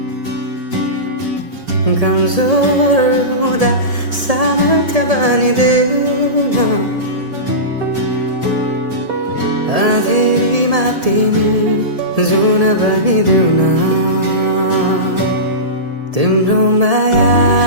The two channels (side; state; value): left; late; 1.7 ms